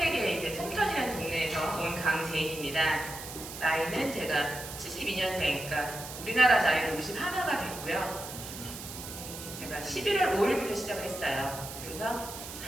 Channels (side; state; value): right; noise; hiss, 10 dB below the sound